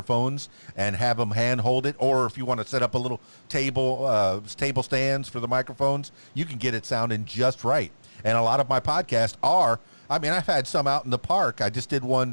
and have them hand-hold it. Or if you want to set up a little table stands for the microphones, you can get it sounding just right. And a lot of my podcasts I've had some out in the park. I just did one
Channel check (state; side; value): inverted; both; correlation -1.00